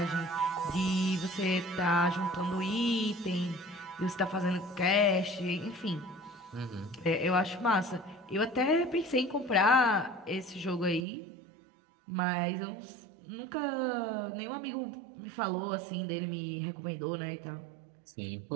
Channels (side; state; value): left; drops out; at 11.1 s